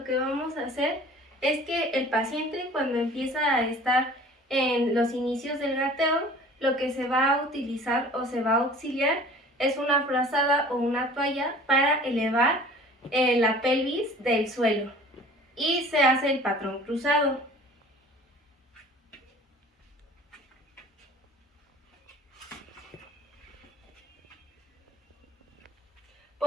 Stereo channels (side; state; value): both; normal; correlation 0.46